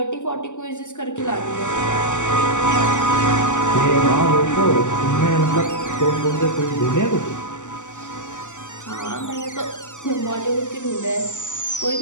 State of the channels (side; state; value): right; late; 0.85 ms